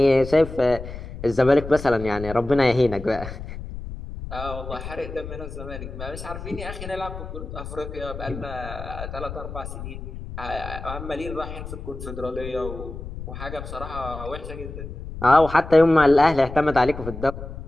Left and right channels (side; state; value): left; noise; rumble, 10 dB below the sound